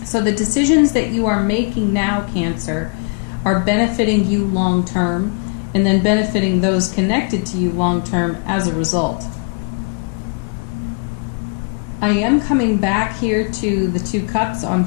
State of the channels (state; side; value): quieter; right; 36.2 dB